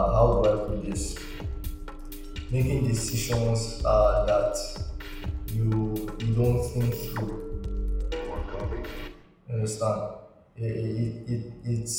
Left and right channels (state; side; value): identical; both; correlation 1.00